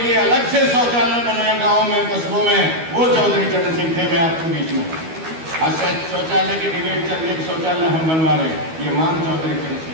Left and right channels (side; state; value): left; late; 12 ms